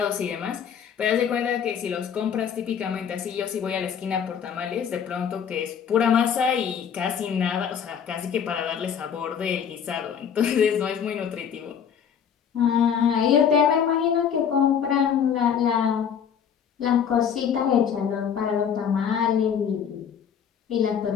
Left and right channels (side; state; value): right; quieter; 7.8 dB